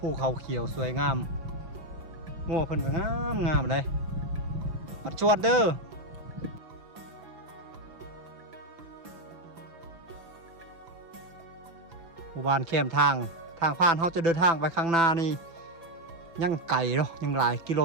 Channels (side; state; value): left; late; 6.0 ms